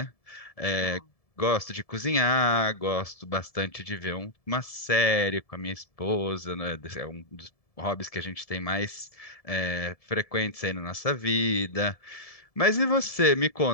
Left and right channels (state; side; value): late; right; 1.7 ms